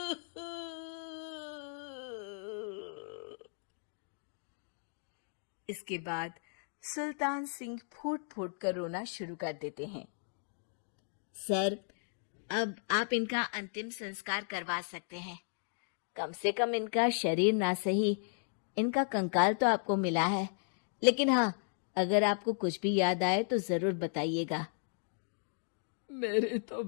इसके बाद सुल्तान सिंह फूट फूट कर रोना शुरू कर देते हैं। सर, अब आप इनका अंतिम संस्कार करवा सकते हैं। कम से कम इनका शरीर ना सही, इनका कंकाल तो आपको मिला है। लेकिन हाँ, अगर आपको कुछ भी याद आए तो जरूर बताइएगा। मेरी तो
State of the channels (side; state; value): right; silent; digital silence